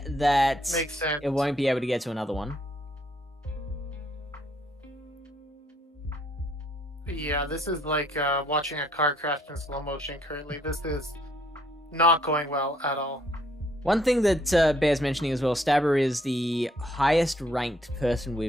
that makes sense. It won't be able to get to another one. Yeah, this is like watching a car crash in slow motion currently. This is not going well at all. One thing that bears mentioning as well, Stabber is the highest ranked person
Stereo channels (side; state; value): both; normal; correlation 0.67